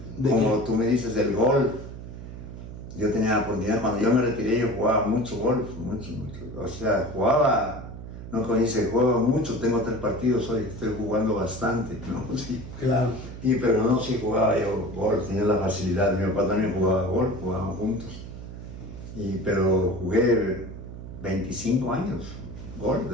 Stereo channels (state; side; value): noise; right; hum, 11 dB below the sound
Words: como tú me dices, del golf. Yo tenía la oportunidad, cuando yo me retiré, yo jugaba mucho golf, mucho. O sea, no como dice, juego mucho, tengo 3 partidos hoy, estoy jugando bastante, ¿no? Sí. Claro. Pero no, sí jugaba yo golf, tenía la facilidad, mi papá también jugaba golf, jugábamos juntos. Pero jugué 25 años golf